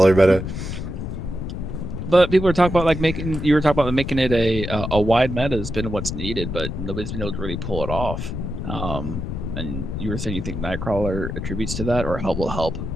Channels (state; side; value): noise; left; rumble, 5 dB below the sound